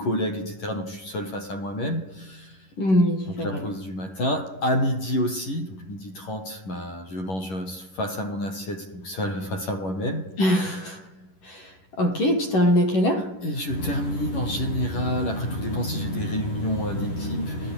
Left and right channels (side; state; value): right; late; 11 ms